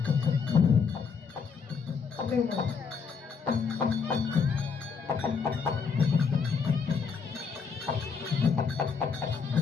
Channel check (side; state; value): right; quieter; 5.7 dB